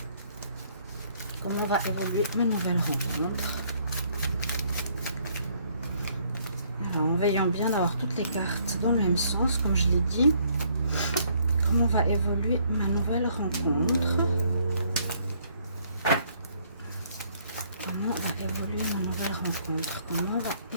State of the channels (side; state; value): both; inverted; correlation -0.66